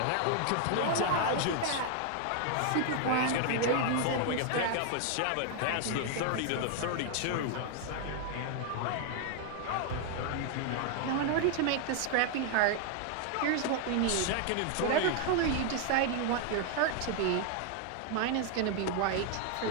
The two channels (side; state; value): both; different; correlation 0.00